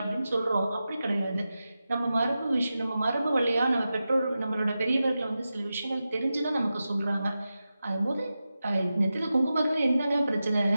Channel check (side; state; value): both; inverted; correlation -0.92